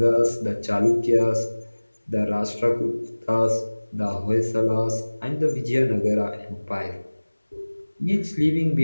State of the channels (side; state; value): both; inverted; correlation -1.00